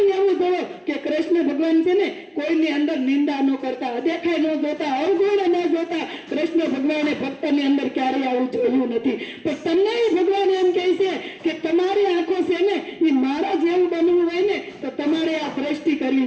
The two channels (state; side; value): identical; both; correlation 1.00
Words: એવું જોવો કે કૃષ્ણ ભગવાન છે ને કોઈની અંદર નિંદા ન કરતા, અદેખાઈ ન જોતા, અવગુણ ન જોતા. કૃષ્ણ ભગવાને ભક્તની અંદર ક્યારેય આવું જોયું નથી. પણ તમને ભગવાન એમ કહે છે કે તમારી આંખો છે ને એ મારા જેવું બનવું હોય ને તો તમારે આ દ્રષ્ટિ કરવી